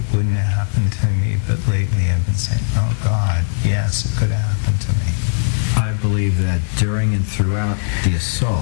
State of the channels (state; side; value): silent; right; digital silence